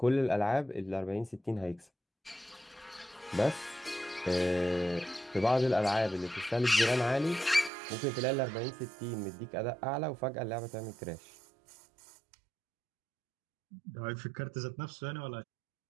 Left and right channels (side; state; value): left; drops out; at 7.7 s